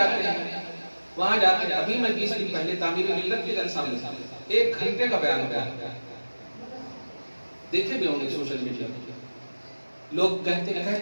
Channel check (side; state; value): both; inverted; correlation -1.00